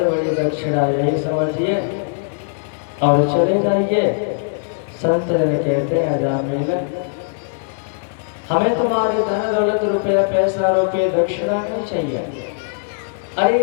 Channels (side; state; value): right; silent; 66 dB below the other